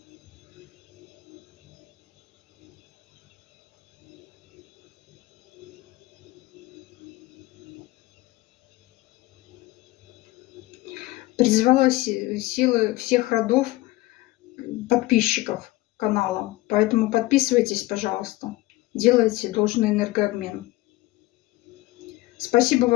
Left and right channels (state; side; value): quieter; right; 19.0 dB